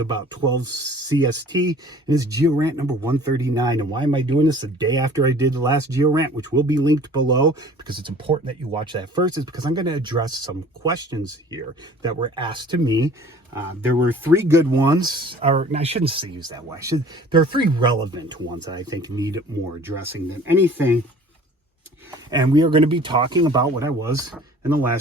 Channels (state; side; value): normal; both; correlation 0.49